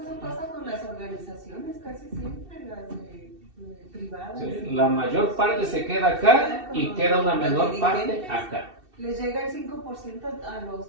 pasa con las organizaciones casi siempre, las privadas. Sí, la mayor parte se queda acá y queda una menor parte acá. Les llega el 5% a los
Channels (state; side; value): late; left; 2.7 ms